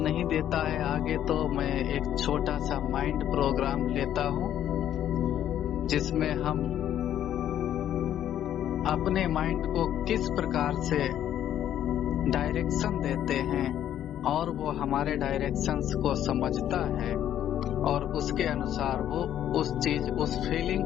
देता है आगे, तो मैं एक छोटा सा माइंड प्रोग्राम लेता हूं जिसमें हम अपने माइंड को किस प्रकार से डायरेक्शन देते हैं और वो हमारे डायरेक्शंस को समझता है और उसके अनुसार वो उस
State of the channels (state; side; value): quieter; right; 11.0 dB